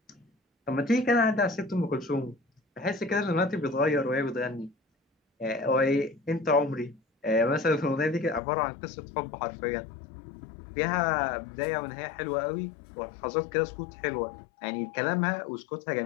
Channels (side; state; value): right; drops out; at 8.4 s